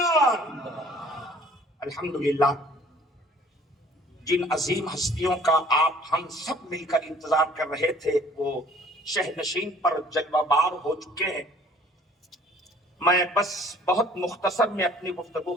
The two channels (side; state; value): both; normal; correlation 0.54